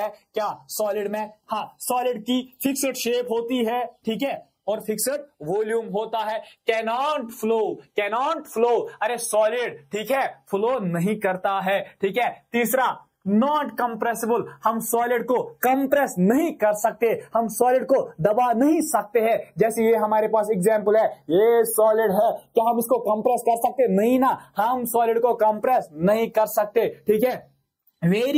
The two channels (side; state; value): both; identical; correlation 1.00